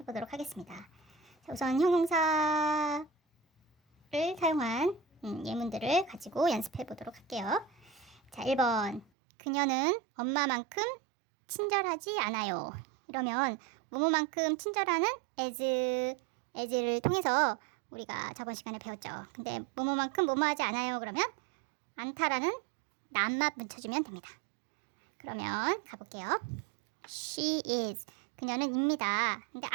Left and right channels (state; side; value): drops out; left; at 9.1 s